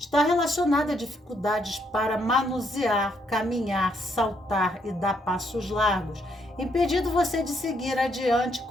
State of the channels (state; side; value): normal; both; correlation 0.73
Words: relacionada a dificuldades para manusear, caminhar, saltar e dar passos largos, impedindo você de seguir adiante